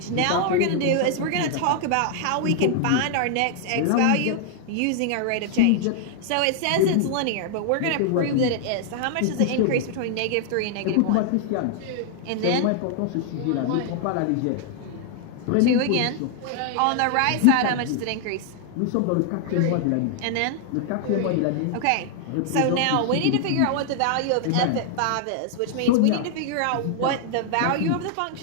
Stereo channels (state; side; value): different; both; correlation 0.00